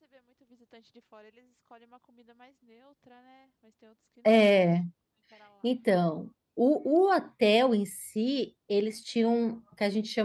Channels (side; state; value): both; identical; correlation 1.00